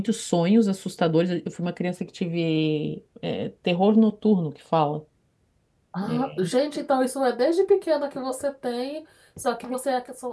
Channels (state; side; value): identical; both; correlation 1.00